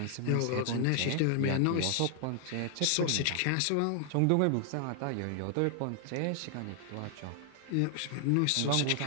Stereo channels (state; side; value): different; both; correlation 0.00